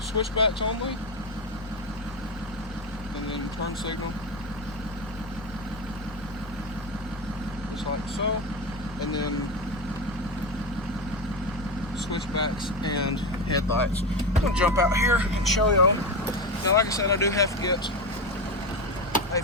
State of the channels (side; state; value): both; normal; correlation 0.17